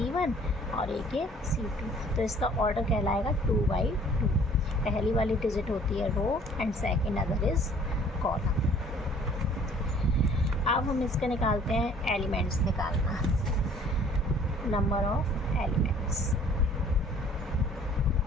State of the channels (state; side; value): normal; both; correlation 0.55